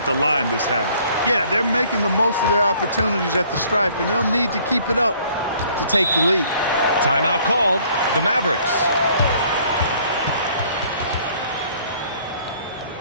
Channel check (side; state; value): both; inverted; correlation -0.59